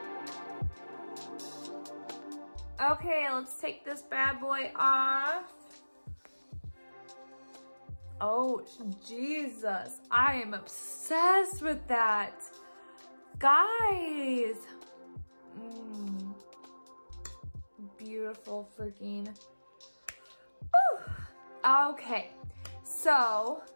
Okay, let's take this bad boy off. Oh, Jesus, I am obsessed with that. Guys. Beautiful freaking. Whew. Okay, so,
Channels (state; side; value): inverted; both; correlation -1.00